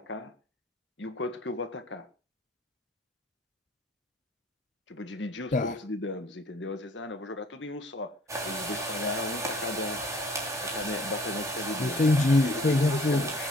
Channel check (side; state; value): both; normal; correlation 0.56